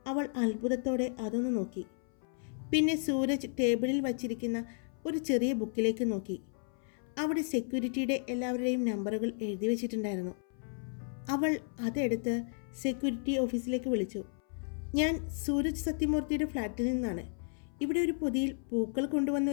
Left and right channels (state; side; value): silent; right; 56 dB below the other